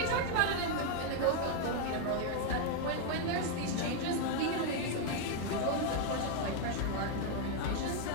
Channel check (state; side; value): different; both; correlation 0.00